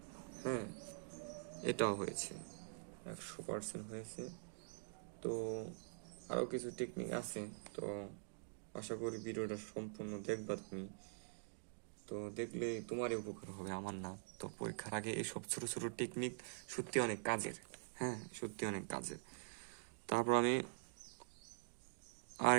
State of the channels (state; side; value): silent; left; digital silence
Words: হ্যাঁ, এটাও হয়েছে, 100% হয়েছে। তো আরও কিছু টেকনিক আছে, তো আশা করি ভিডিওটা সম্পূর্ণ দেখবা তুমি। তো দেখলে তোমারই উপকার হবে, আমার না। তো পরীক্ষার আগে এইসব ছোট ছোট টেকনিক সত্যি অনেক কাজের, হ্যাঁ, সত্যি অনেক কাজের। তারপর আমি